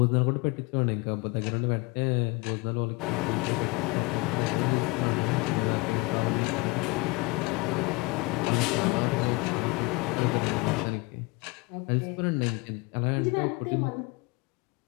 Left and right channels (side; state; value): right; quieter; 25.1 dB